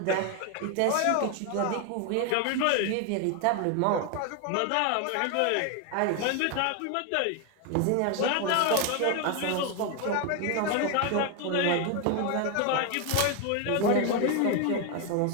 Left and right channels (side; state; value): both; different; correlation 0.01